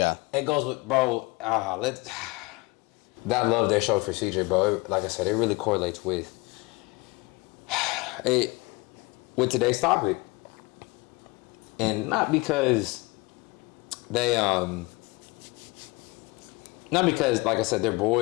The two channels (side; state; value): right; quieter; 24.7 dB